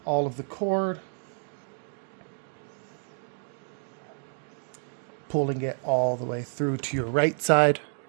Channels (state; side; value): silent; left; 58 dB below the other